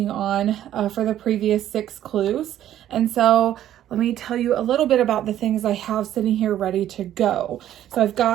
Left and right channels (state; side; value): quieter; left; 11.9 dB